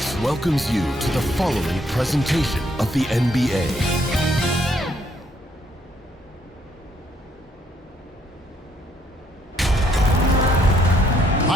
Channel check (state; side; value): normal; both; correlation 0.69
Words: welcomes you to the following presentation of the NBA.